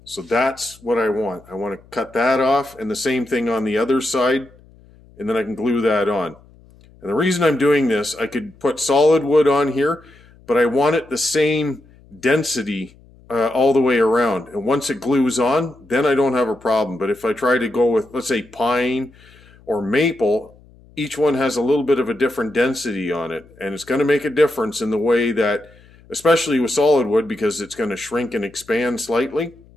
So that's what I want. I want to cut that off, and the same thing on the other side, and then I can glue that on. And the reason I'm doing this, I could put solid wood on here, but I want it the same density all the way around. And once it glues on, then I don't have a problem. But if I try to go with, let's say, pine or maple, each one has a little bit of a different density on it. And it's going to make a difference in the way that, especially with solid wood, because it's going to shrink and expand slightly.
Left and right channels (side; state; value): left; noise; hum, 26 dB below the sound